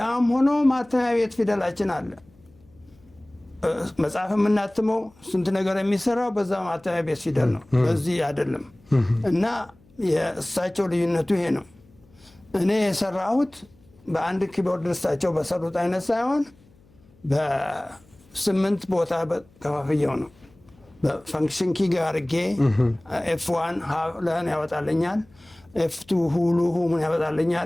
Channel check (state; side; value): noise; left; hum, 29 dB below the sound